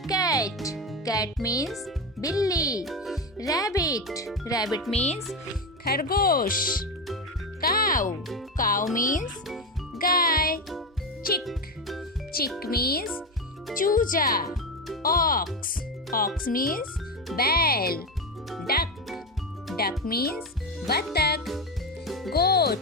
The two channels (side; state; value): both; normal; correlation 0.15